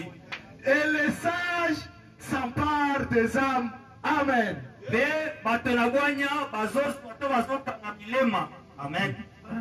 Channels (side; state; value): both; identical; correlation 1.00